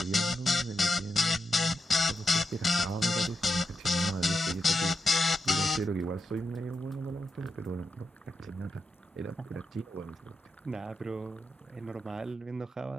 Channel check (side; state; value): both; normal; correlation 0.87